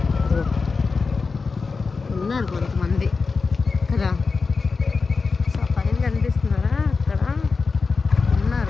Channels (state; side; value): quieter; right; 4.6 dB